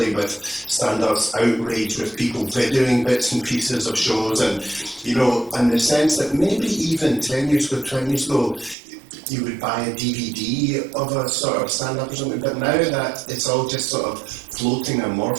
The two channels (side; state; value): left; drops out; at 8.8 s